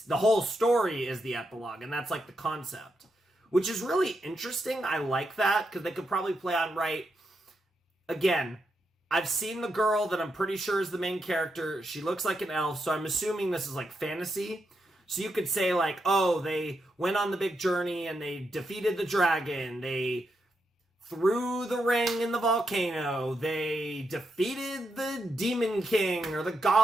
whole story is the epilogue, and that's the concept. Which is really interesting. I like that, because they could probably play on right. Again, I've seen the girl that I'm pretty sure is the main character. She looks like an elf, so I'm assuming this is fantasy. So you could say oh, they went on the big journey and they defeated the dragon. They threw the ring in the volcano. They defeated the demon king or the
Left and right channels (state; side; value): normal; both; correlation 0.83